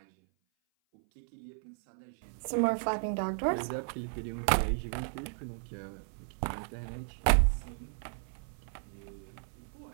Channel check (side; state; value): left; silent; 55 dB below the other